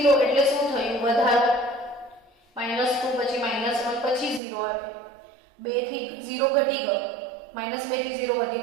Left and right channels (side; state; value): left; drops out; at 4.4 s